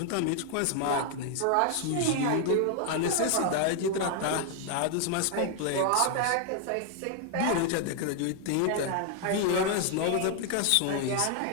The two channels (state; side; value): different; both; correlation 0.00